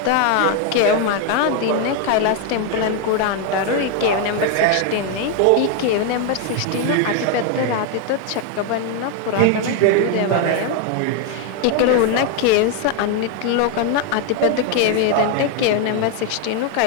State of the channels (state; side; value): different; both; correlation 0.01